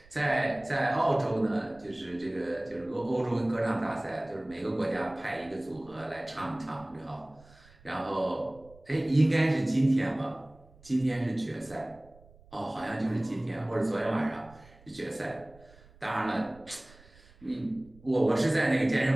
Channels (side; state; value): right; noise; rumble, 25 dB below the sound